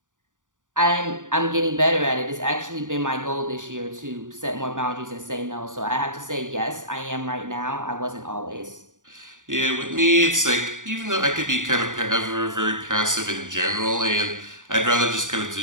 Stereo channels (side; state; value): left; late; 0.87 ms